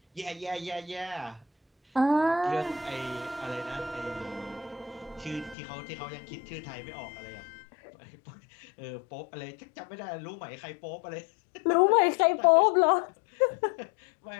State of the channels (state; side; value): drops out; right; at 5.6 s